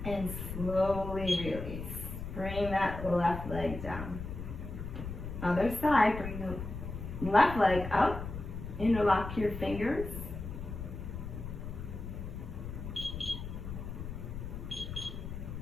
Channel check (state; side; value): noise; left; rumble, 7 dB below the sound